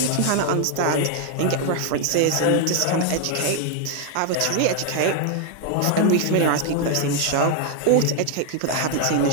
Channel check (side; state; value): both; different; correlation 0.00